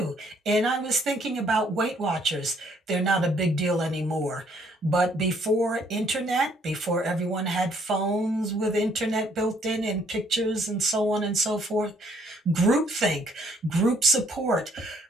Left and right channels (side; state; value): both; normal; correlation 0.66